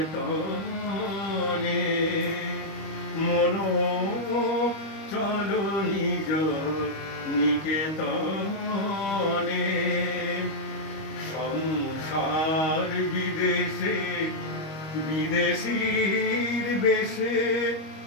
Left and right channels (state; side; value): late; right; 25 ms